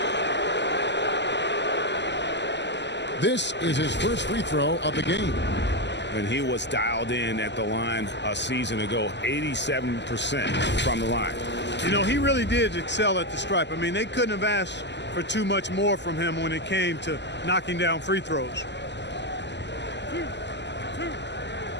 This is his first free throw of the game. And he was dialed in at the line a season ago, 87% from the line. You know, he really did excel at the stripe. I mean, they couldn't have asked for too much more from him when it came to knocking down free throws.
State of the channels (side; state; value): right; late; 0.51 ms